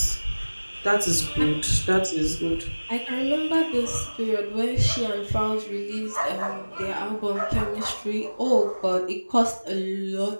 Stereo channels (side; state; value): both; inverted; correlation -1.00